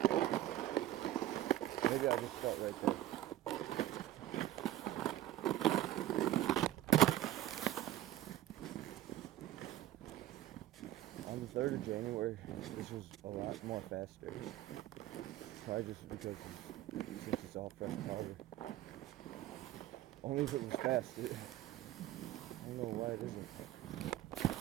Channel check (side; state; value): left; quieter; 13.6 dB